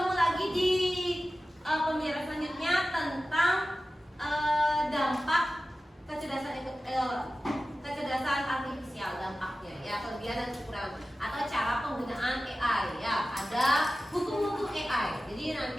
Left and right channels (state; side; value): normal; both; correlation 0.95